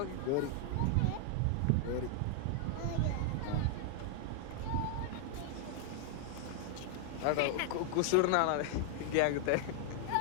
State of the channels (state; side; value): different; both; correlation 0.00